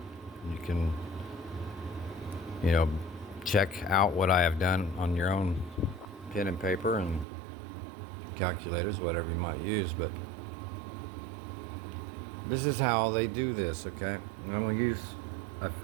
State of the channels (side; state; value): left; drops out; at 7.2 s